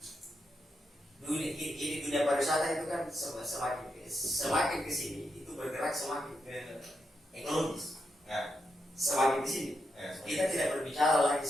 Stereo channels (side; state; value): both; normal; correlation 0.84